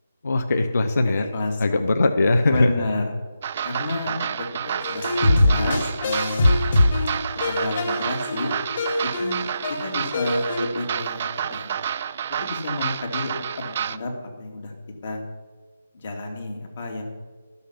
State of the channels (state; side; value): inverted; both; correlation -0.84